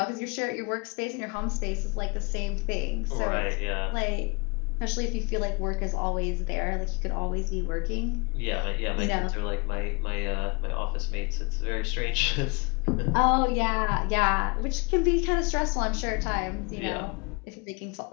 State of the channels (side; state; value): right; quieter; 29.8 dB